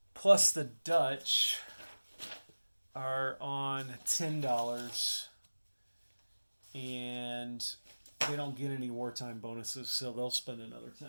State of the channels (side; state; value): both; inverted; correlation -1.00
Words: Plus the Dutch are on $10, and they don't get any wartime bonuses, so they'll spend another